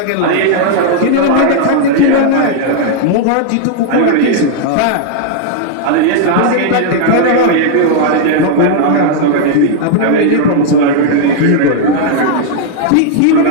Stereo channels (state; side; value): different; both; correlation -0.01